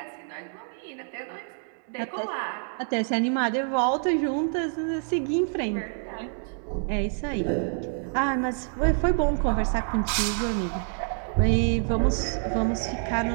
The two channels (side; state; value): left; silent; 58 dB below the other